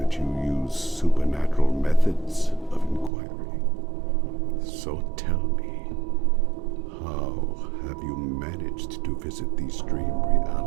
you use supernatural methods of inquiry. So tell me, how have you managed to visit these dream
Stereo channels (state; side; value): drops out; left; at 3.1 s